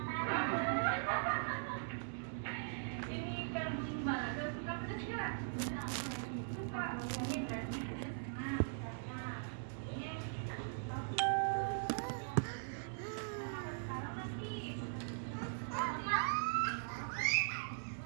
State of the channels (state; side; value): silent; left; digital silence